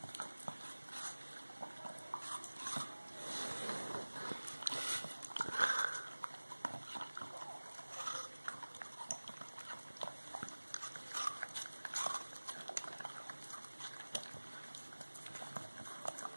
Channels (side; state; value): both; inverted; correlation -1.00